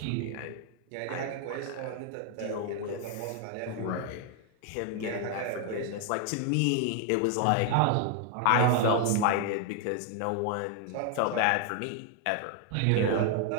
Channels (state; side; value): different; both; correlation 0.00